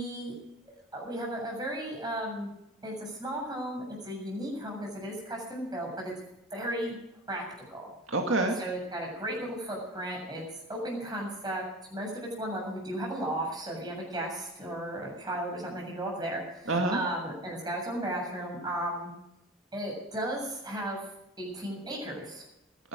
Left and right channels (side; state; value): both; normal; correlation 0.34